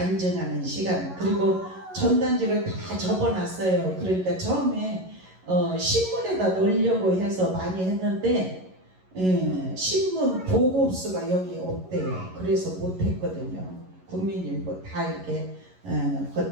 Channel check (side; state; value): left; late; 11 ms